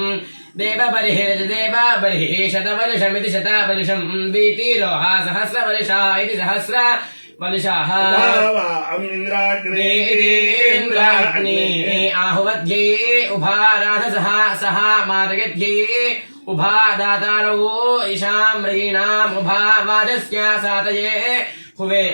దేవబర్హిర్దేవ బర్హిః శతవర్షమితి శతవర్షం వీతిరోహ సహస్రవర్షా ఇతి సహస్రవర్షాః. ఇంద్రాగ్ని ఆహువధ్యే ఉభారాధసః సహ మాతయధ్యే ఉభా దాతారో ఇషామ్రీణాం ఉభా వాజస్య సాతయే హువే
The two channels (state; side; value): inverted; both; correlation -1.00